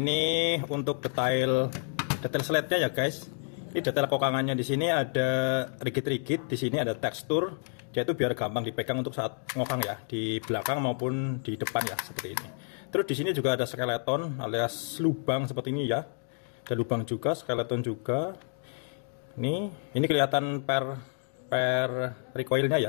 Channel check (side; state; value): right; silent; 58 dB below the other